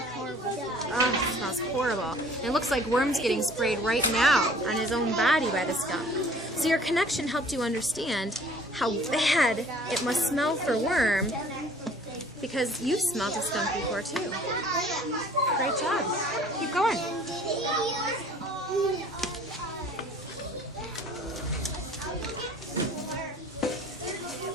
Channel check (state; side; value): normal; both; correlation 0.52